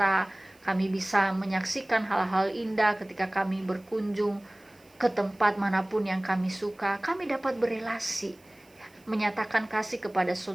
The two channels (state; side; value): noise; right; hiss, 30 dB below the sound